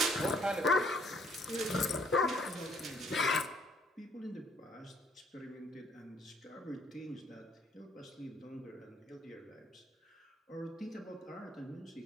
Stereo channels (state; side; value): normal; both; correlation 0.64